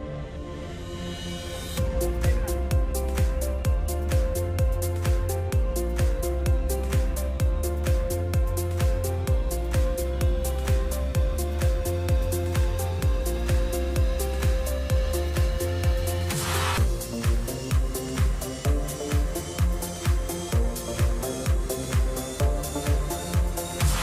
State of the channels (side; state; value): both; identical; correlation 1.00